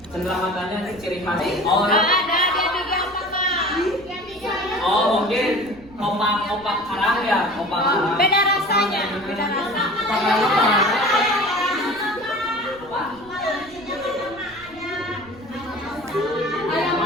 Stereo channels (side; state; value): right; noise; rumble, 23 dB below the sound